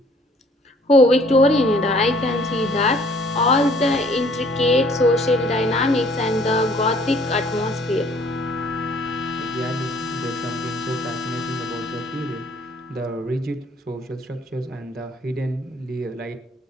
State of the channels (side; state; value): both; normal; correlation 0.58